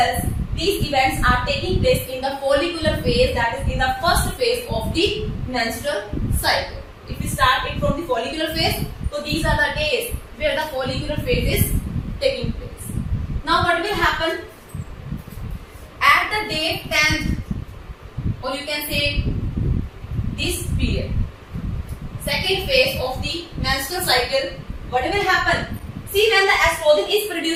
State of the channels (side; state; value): both; identical; correlation 1.00